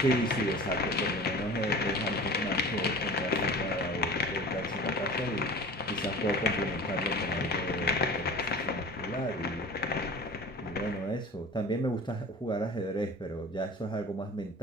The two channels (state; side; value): normal; both; correlation 0.39